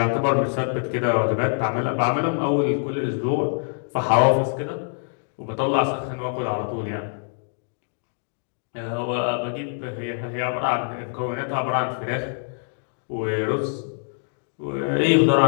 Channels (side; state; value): right; silent; digital silence